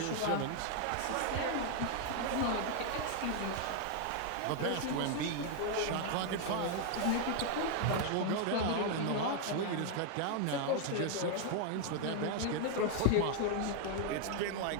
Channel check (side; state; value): both; different; correlation 0.00